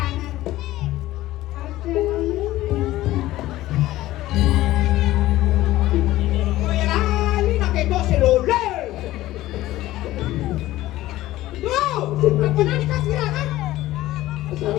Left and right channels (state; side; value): quieter; right; 16.0 dB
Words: Oh ya lah, ini nak ketok seluler. Tuh, apa nak dikasih kan? Asal